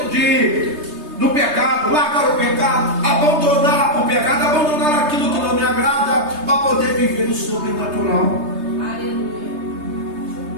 quê? Do pecado, largar o pecado, abandonar o pecado, abandonar aquilo que não me agrada, para poder viver o sobrenatural.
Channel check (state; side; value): late; left; 3.3 ms